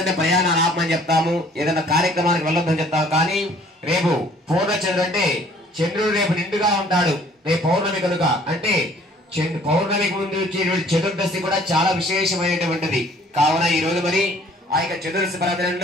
అంటే ప్రయాణాలు ఆపమని చెప్తాము, ఏదైనా కార్యక్రమానికి వెళ్ళొద్దని చెప్తాము. కానీ రేపు పూర్ణచంద్రుడు అంటే చంద్రుడు రేపు నిండుగా ఉంటాడు. రేపు పౌర్ణమి కనుక అంటే పౌర్ణమికి ముందు వచ్చేటువంటి చతుర్దశి కూడా చాలా విశేషమైనటువంటిది. కావున ఈ రోజు మరి ఆ యొక్క చతుర్దశి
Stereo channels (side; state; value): both; normal; correlation 0.56